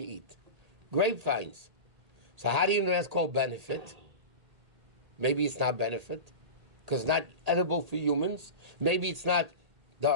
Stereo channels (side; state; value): left; late; 1.8 ms